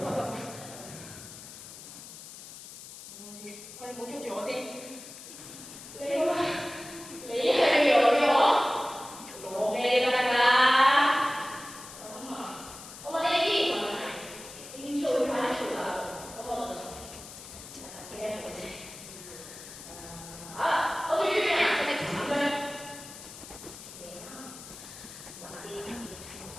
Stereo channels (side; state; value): left; noise; hiss, 14 dB below the sound